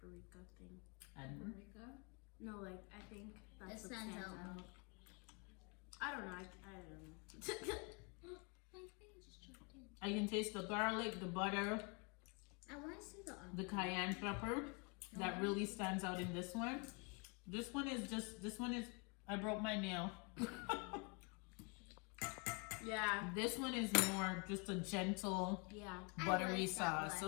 thing. And No, like I think that's It what stands stands out. out. I don't know. I don't know. My finger just chopped in. I can taste the garlic, the butter, I want to see the onion. the cayenne pepper. That really stands out in this one. This one is, I broke my nail. Yeah. This one is more just a gentle, Yeah. buttery I like that sauce.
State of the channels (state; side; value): quieter; right; 32.2 dB